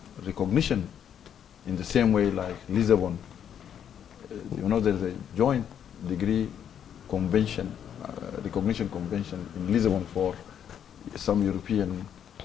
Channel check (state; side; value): quieter; right; 9.0 dB